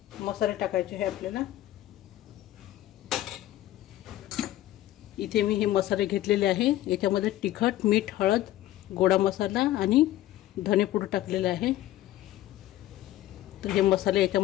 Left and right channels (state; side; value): quieter; right; 14.4 dB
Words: मसाले टाकायचे आहे आपल्याला. इथे मी हे मसाले घेतलेले आहे. याच्यामध्ये तिखट, मीठ, हळद, गोडा मसाला आणि धनेपूड टाकलेला आहे. तर हे मसाले